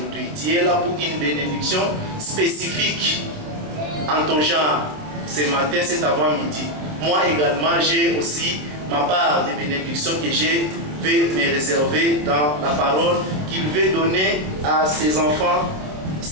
Dieu est là pour une bénédiction spécifique en ton genre ce matin, cet avant-midi. Moi également, j'ai aussi ma part de bénédiction que je vais me réserver dans la parole qu'il veut donner à ses enfants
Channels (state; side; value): late; left; 27 ms